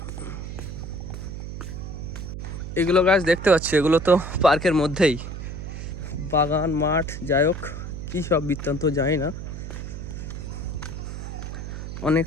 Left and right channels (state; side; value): noise; right; hum, 7 dB below the sound